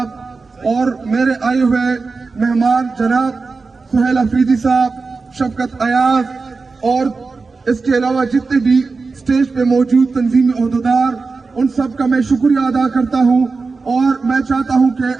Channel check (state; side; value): quieter; left; 4.3 dB